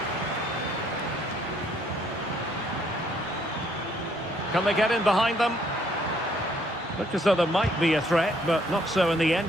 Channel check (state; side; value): normal; both; correlation 0.67